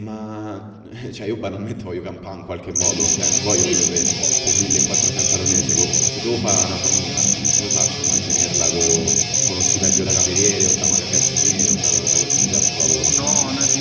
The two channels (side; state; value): both; identical; correlation 1.00